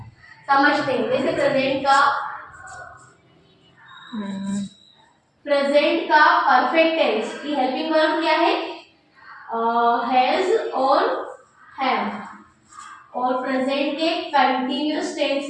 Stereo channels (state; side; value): identical; both; correlation 1.00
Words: समझते हैं, जैसे प्रेजेंट का परफेक्ट टेंस की हेल्पिंग वर्ब क्या है, हैज और हैव। और प्रेजेंट के कंटिन्यूअस टेंस